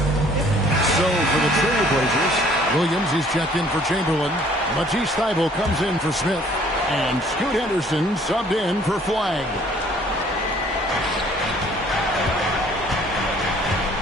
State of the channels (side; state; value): both; normal; correlation 0.57